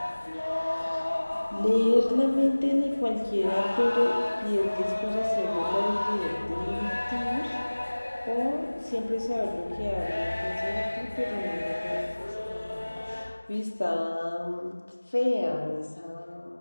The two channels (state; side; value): inverted; both; correlation -1.00